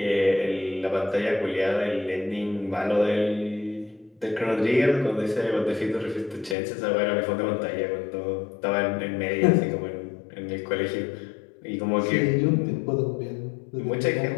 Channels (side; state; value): right; drops out; at 6.6 s